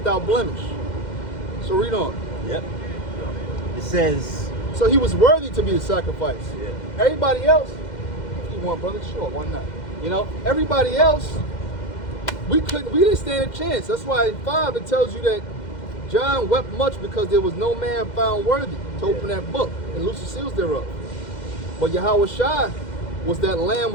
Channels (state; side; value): late; right; 2.1 ms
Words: blemish. So read on. Yep. It says, So he was worthy to be the sacrifice. Yeah. Everybody else, if you want, brother, sure, why not? You know, everybody else, we didn't stand a chance. That's why in 5 it tells you that John wept much because there was no man found worthy to open that book and loose the seals thereof. But Yahweh Shai was that lamb